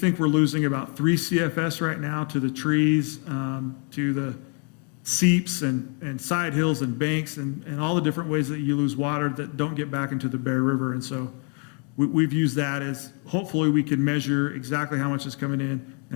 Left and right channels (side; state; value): right; quieter; 38.0 dB